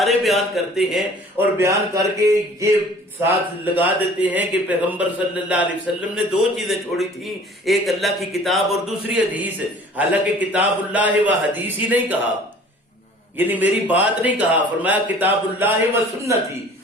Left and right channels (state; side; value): normal; both; correlation 0.49